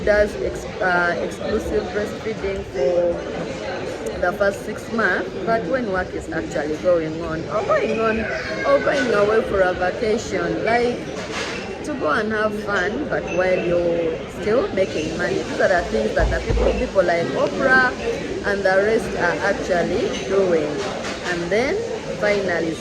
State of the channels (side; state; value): both; identical; correlation 1.00